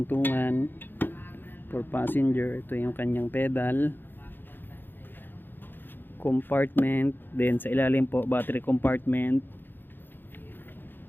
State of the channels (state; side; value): late; right; 0.096 ms